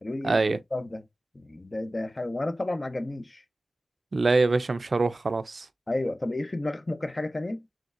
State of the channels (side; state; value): both; normal; correlation 0.96